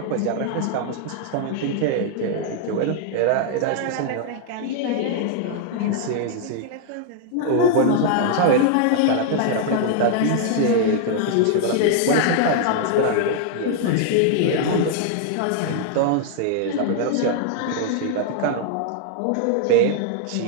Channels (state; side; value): different; both; correlation 0.00